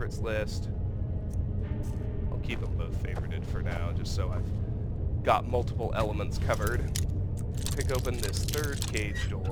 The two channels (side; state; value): both; identical; correlation 1.00